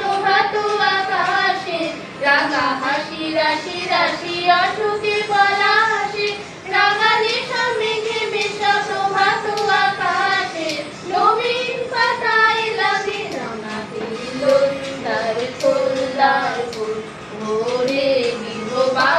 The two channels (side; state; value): both; identical; correlation 1.00